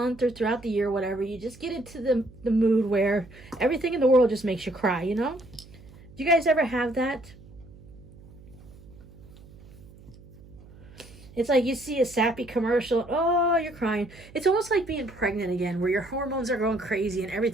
or throughout the year, whatever, you just get into the mood where everything in the world just makes you cry, Do you guys ever have that? It's like you see a sappy commercial, oh, you're crying. It's almost like being pregnant again, where your hormones are going crazy and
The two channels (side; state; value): right; noise; hum, 21 dB below the sound